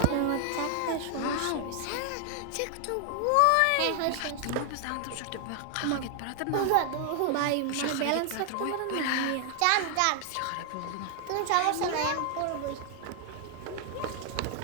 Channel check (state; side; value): different; both; correlation 0.00